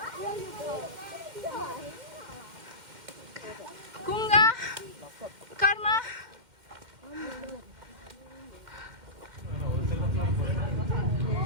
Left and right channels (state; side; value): late; left; 2.1 ms